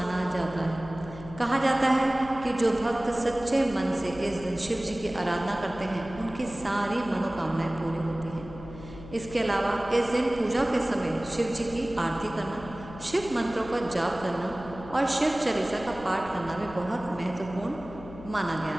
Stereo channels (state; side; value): noise; left; hum, 15 dB below the sound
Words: जाता है। कहा जाता है कि जो भक्त सच्चे मन से इस दिन शिव जी की आराधना करते हैं, उनकी सारी मनोकामनाएं पूरी होती हैं। इसके अलावा इस दिन पूजा के समय शिव जी की आरती करना, शिव मंत्रों का जाप करना और शिव चालीसा का पाठ करना भी बहुत महत्वपूर्ण माना गया